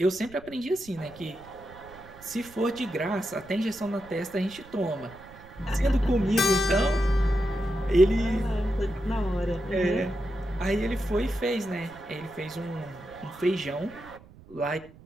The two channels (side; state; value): right; noise; rumble, 21 dB below the sound